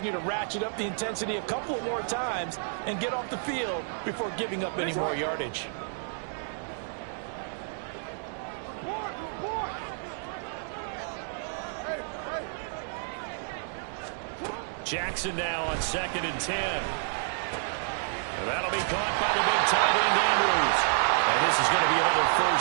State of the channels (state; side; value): silent; left; 58 dB below the other